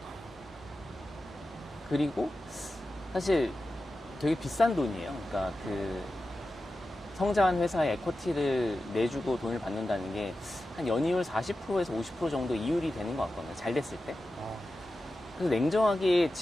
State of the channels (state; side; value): normal; both; correlation 0.93